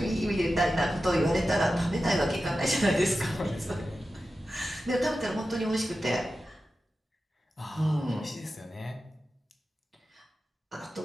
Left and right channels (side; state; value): both; normal; correlation 0.92